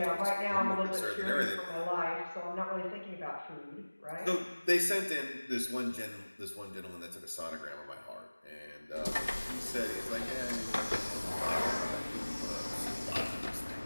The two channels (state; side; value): inverted; both; correlation -1.00